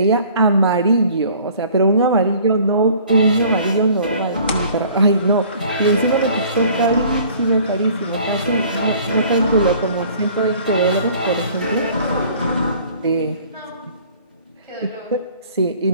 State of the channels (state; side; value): inverted; both; correlation -0.52